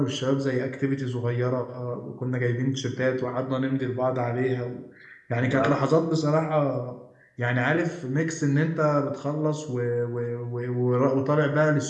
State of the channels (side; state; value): both; identical; correlation 1.00